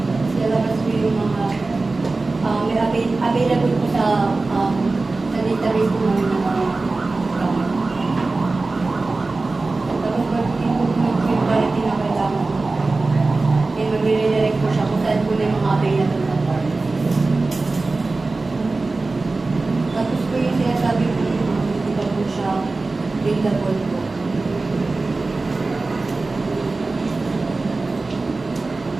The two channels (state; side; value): quieter; left; 3.5 dB